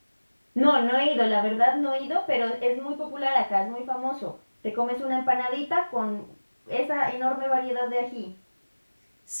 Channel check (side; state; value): both; inverted; correlation -1.00